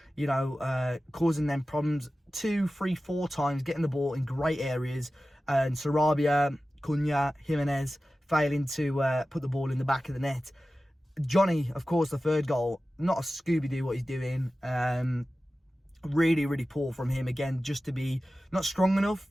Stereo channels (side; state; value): both; normal; correlation 0.95